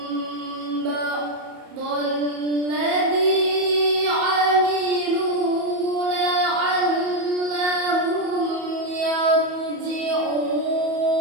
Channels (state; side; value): late; left; 31 ms